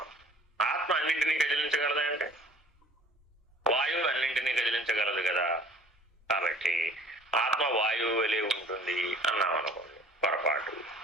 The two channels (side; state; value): both; normal; correlation 0.50